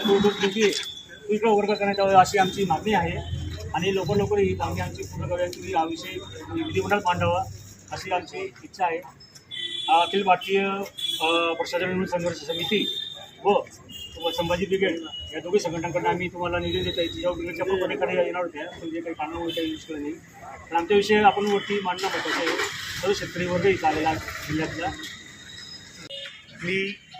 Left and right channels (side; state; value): both; identical; correlation 1.00